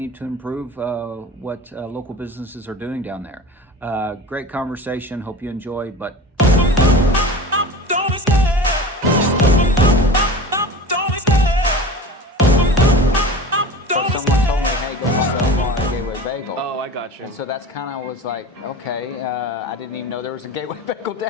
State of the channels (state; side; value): normal; both; correlation 0.35